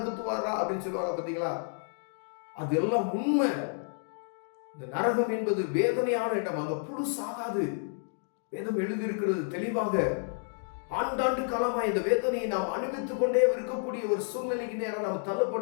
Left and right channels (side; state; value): right; silent; digital silence